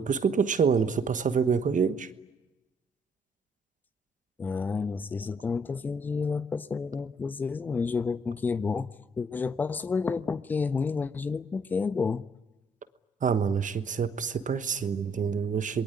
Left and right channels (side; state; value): both; normal; correlation 0.66